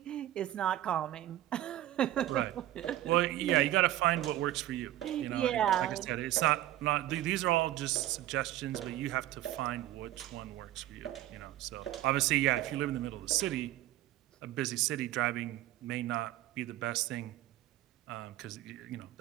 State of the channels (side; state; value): left; quieter; 14.2 dB